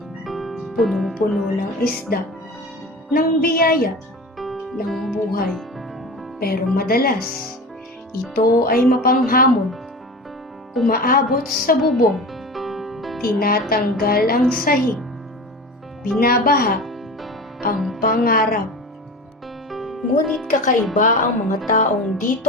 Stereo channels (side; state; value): both; normal; correlation 0.33